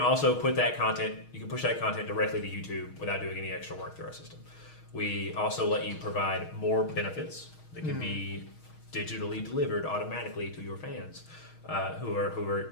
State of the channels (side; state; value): right; late; 6.4 ms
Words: put that content, you can push that content directly to YouTube without doing any extra work through our system. We also let you provide more benefits that can be digitally delivered automatically to your fans who are